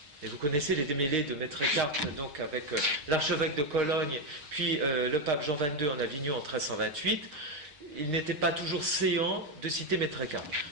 Et vous connaissez les démêlés de Maître Eckhart, donc avec l'archevêque de Cologne, puis le pape Jean XXII en Avignon en 1328. Il n'était pas toujours séant de citer Maître Eckhart.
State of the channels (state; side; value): late; left; 6.4 ms